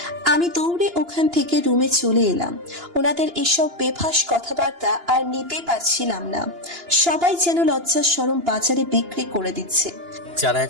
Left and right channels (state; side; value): late; left; 2.9 ms